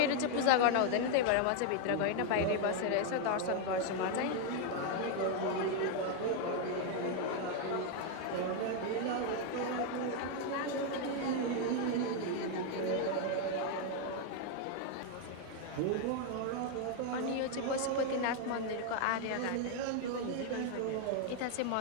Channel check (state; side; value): different; both; correlation 0.01